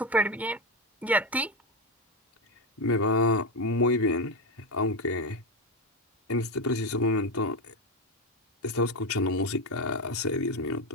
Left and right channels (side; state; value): both; normal; correlation 0.11